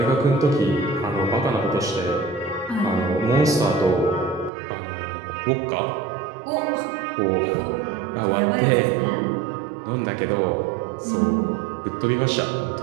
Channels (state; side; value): drops out; left; at 4.5 s